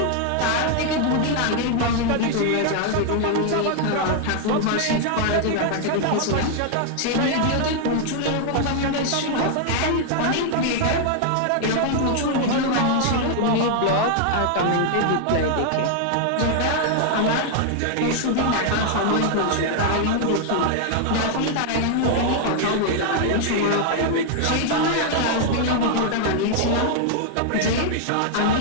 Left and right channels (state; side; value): different; both; correlation 0.00